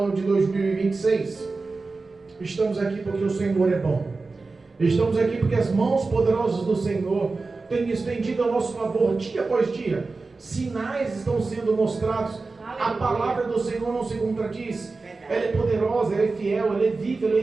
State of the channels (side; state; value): left; quieter; 3.8 dB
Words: de 2026. Estamos aqui porque o Senhor é bom. Estamos aqui porque as mãos poderosas do Senhor têm estendido a nosso favor dia após dia. Sinais estão sendo mostrados. Aleluia. A palavra do Senhor não se contradiz. Ela é poderosa, ela é fiel, ela é viva, ela é